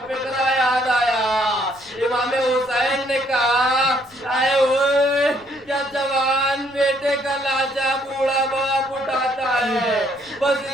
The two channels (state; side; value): noise; left; rumble, 30 dB below the sound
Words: فقرہ یاد آیا. امام حسین نے کہا اے ہوئے کیا جوان بیٹے کا لاشا بوڑھا باپ اٹھاتا ہے بس